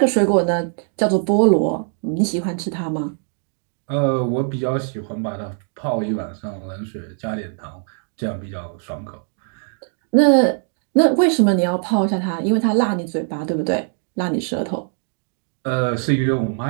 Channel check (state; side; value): silent; left; 56 dB below the other